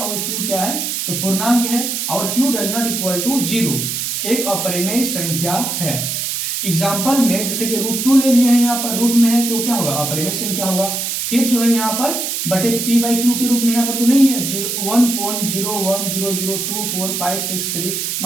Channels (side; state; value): right; noise; hiss, 2 dB below the sound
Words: q क्या है, तो पूर्णांक है और q does not equal to 0, एक अपरिमेय संख्या है। एग्जाम्पल में जैसे कि √2 ले लिए हैं, यहाँ पर रूट में है तो क्या होगा, अपरिमेय संख्या होगा। फिर जो है यहाँ पर बटे p/q के रूप में यहाँ पर तो नहीं है, 1.0100245663।